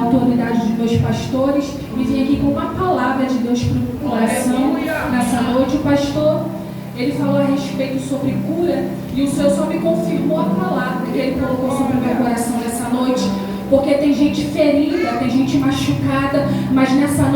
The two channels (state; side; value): identical; both; correlation 1.00